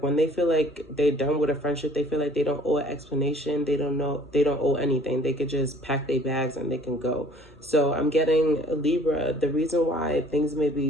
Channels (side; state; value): both; normal; correlation 0.53